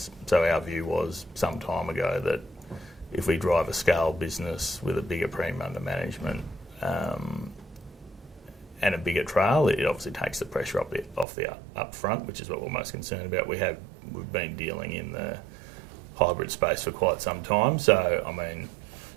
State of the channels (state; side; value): drops out; left; at 11.2 s